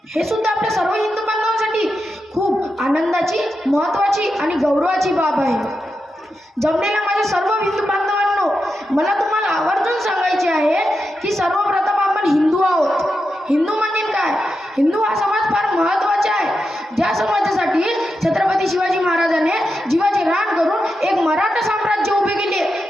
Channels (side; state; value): both; normal; correlation 0.88